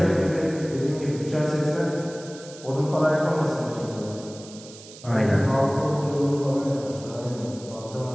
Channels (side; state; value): right; noise; hiss, 18 dB below the sound